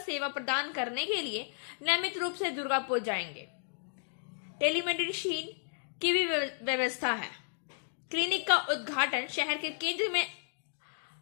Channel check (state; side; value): silent; right; digital silence